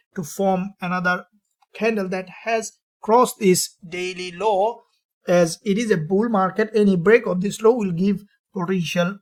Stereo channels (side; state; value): both; identical; correlation 1.00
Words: to form another candle that has crossed this daily low. As it is a bull market, any break of this low will give potential